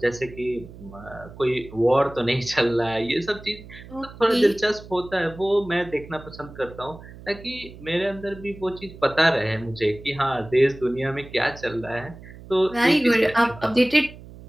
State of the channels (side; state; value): right; noise; hum, 17 dB below the sound